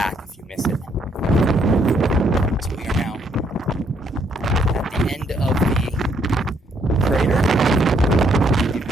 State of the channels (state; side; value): normal; both; correlation 0.70